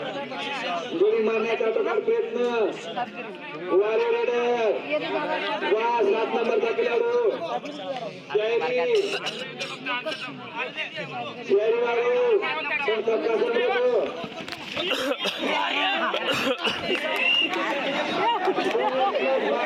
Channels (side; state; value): both; identical; correlation 1.00